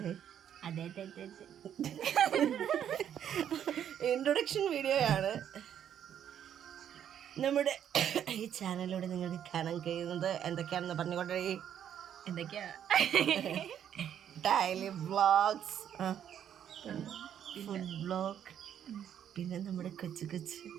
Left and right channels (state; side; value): quieter; left; 9.6 dB